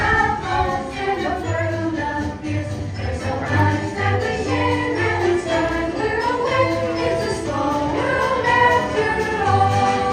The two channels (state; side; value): identical; both; correlation 1.00